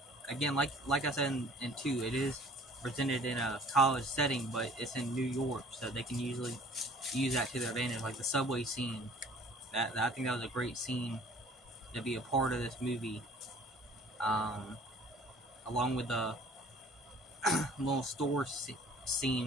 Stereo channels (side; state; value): both; normal; correlation 0.51